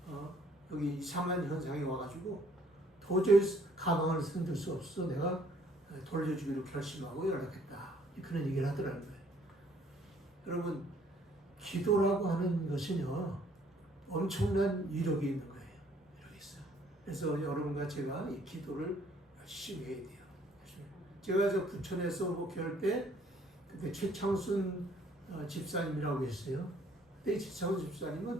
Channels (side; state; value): both; normal; correlation 0.62